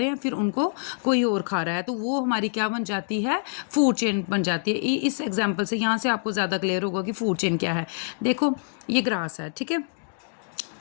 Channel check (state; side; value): silent; right; digital silence